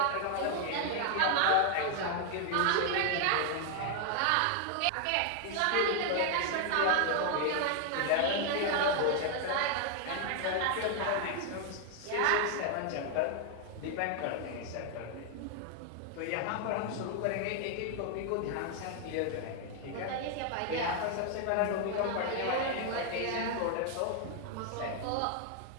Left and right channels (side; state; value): both; different; correlation 0.00